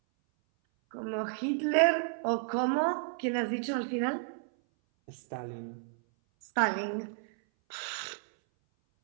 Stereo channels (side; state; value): left; silent; 56 dB below the other